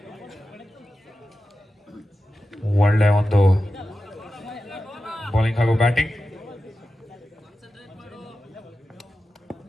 ಒಳ್ಳೆ ಒಂದು ಬೌಲಿಂಗ್ ಹಾಗೂ ಬ್ಯಾಟಿಂಗ್.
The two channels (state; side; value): normal; both; correlation 0.92